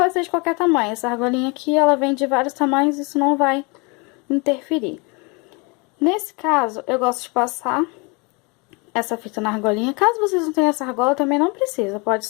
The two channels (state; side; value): quieter; right; 29.7 dB